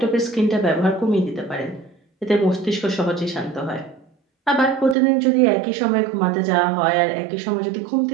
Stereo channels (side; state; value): left; drops out; at 5.0 s